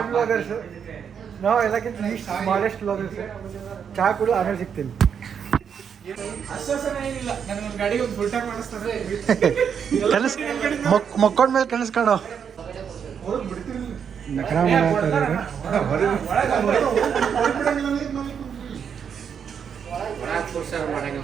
ಬ್ಲಾಗರ್ಸ್, ನಾವು ಎಲ್ಲಕ್ಕಿಂತ ಸ್ಮಾಲೆಸ್ಟ್ ಬ್ಲಾಗರ್ಸ್. ಚಹಾ ಕೂಡ ಆಮೇಲೆ ಸಿಗ್ತೀನಿ. ಮಕ್ಕೊಂಡ್ಮೇಲೆ ಕನಸ್ಕಾಣೋ ನಕರ ಮಾಡಾಕತ್ತಾರೆ.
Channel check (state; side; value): quieter; left; 7.4 dB